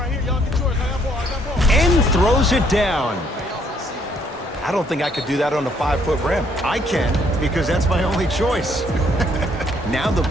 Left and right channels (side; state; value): both; normal; correlation 0.67